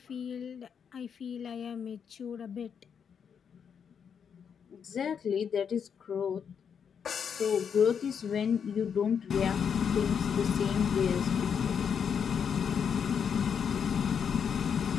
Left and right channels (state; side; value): quieter; right; 7.2 dB